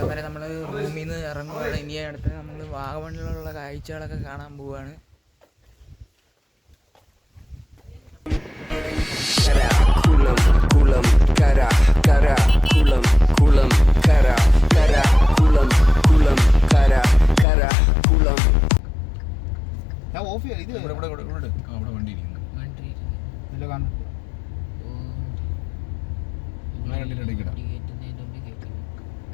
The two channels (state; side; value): drops out; right; at 17.4 s